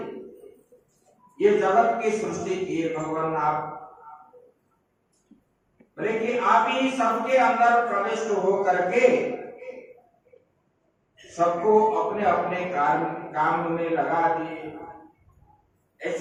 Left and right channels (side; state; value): both; identical; correlation 1.00